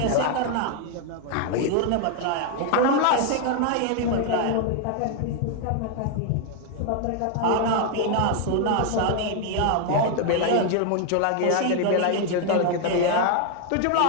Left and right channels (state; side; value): different; both; correlation 0.01